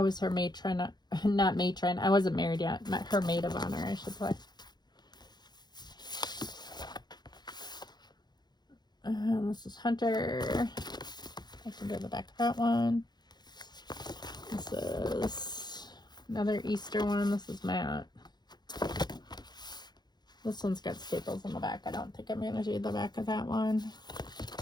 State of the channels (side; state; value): right; late; 0.21 ms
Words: was her matron, not matron. I wasn't married yet. Her maid of honor, I should say. This is Hunter. I can do the back of that one. This is another Easter one. This is Matt. This one's got staples on the back. I don't think I'm going to do the back of that one.